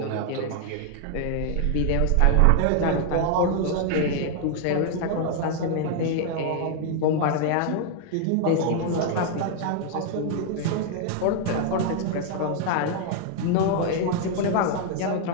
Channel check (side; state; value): both; different; correlation 0.00